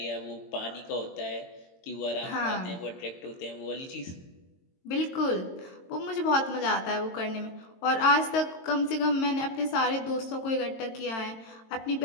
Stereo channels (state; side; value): late; right; 22 ms